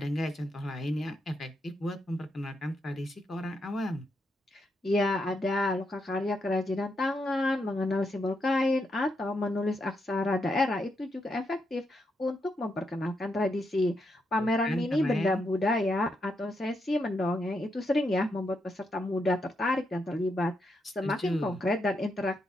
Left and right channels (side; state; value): both; normal; correlation 0.81